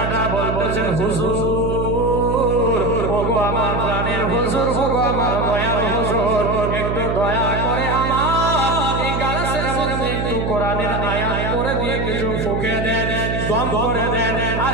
বলতেছেন, হুজুর ওগো আমার প্রাণের হুজুর, ওগো আমার দয়ার হুজুর, একটু দয়া করে আমার এই গ্লাসের মধ্যে একটু কোরআনের আয়াত করে দিয়ে কিছু ফুঁকে দেন, দম করে দেন। আর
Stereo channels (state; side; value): noise; right; hum, 1 dB below the sound